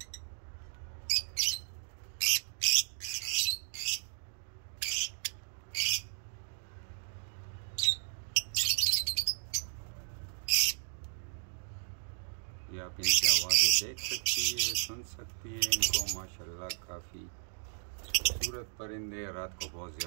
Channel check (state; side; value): silent; left; 55 dB below the other